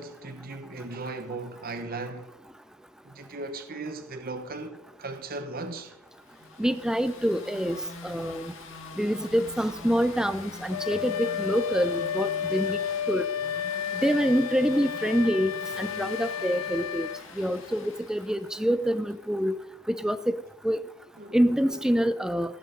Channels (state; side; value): normal; both; correlation 0.75